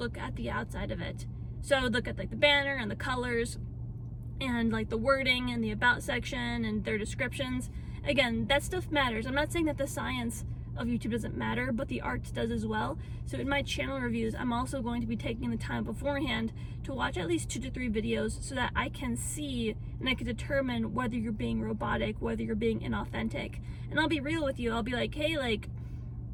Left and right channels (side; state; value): both; identical; correlation 1.00